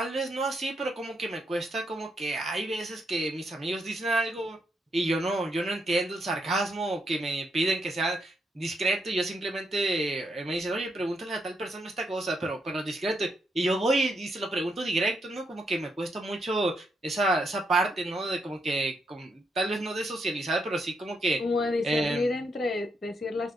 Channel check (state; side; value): normal; both; correlation 0.79